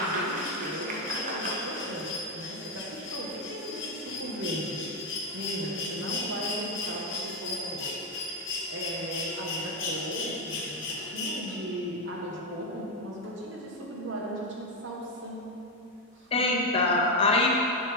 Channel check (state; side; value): normal; both; correlation 0.06